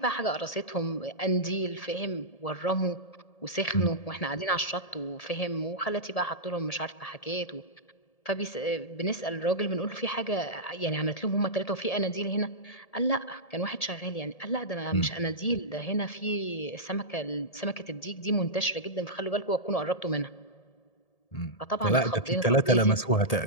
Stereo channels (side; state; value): right; late; 1.7 ms